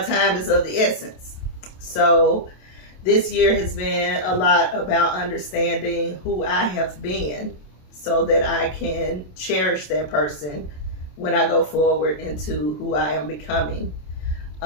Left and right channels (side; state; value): right; late; 27 ms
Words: is of the essence. So this year has been a lot about understanding who I have been, so that I can cherish that person when I go forward into who I am becoming.